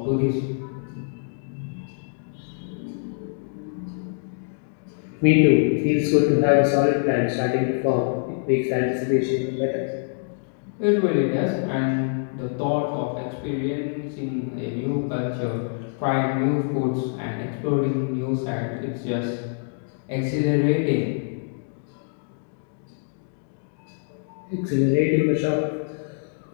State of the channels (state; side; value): silent; right; digital silence